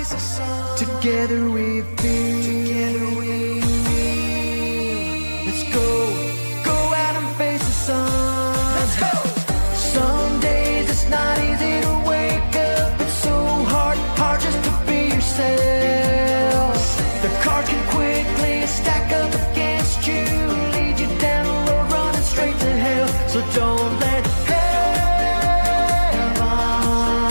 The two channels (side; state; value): both; inverted; correlation -1.00